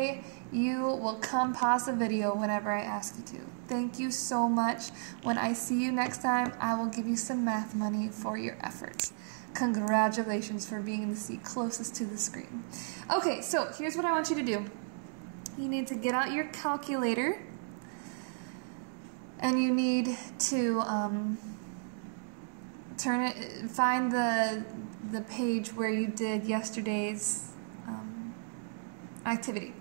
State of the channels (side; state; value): left; silent; digital silence